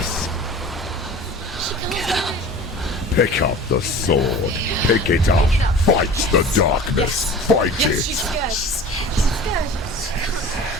Pick up the sword. Pick it up. Fight the darkness. Fight it.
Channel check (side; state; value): both; normal; correlation 0.40